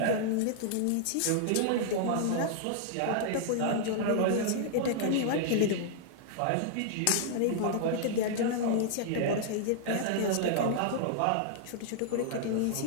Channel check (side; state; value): both; different; correlation -0.01